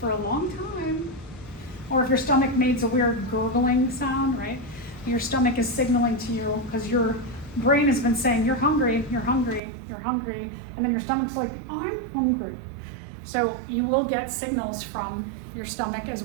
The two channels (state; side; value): drops out; left; at 9.6 s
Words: a long time. Or if your stomach makes a weird gurgling sound, right? Your stomach is signaling to you because your brain has been saying, you're hungry, you're hungry, you're hungry. And then your stomach's like, I'm hungry. So you will get signals from your stomach as